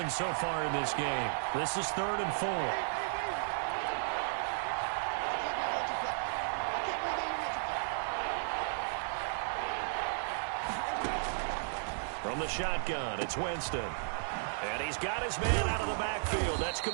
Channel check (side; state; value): left; silent; digital silence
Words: so far in this game. This is 3rd and 4. From the shotgun, it's Winston. And he's got his man out of the backfield. That's